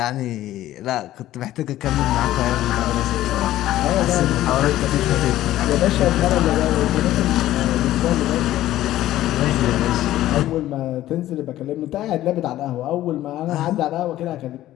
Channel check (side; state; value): right; quieter; 14.2 dB